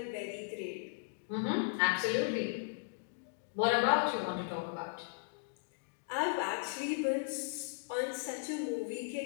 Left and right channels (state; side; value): silent; right; digital silence